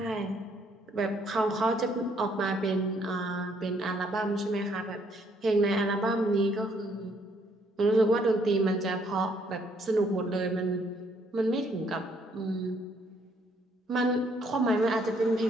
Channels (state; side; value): normal; both; correlation 0.68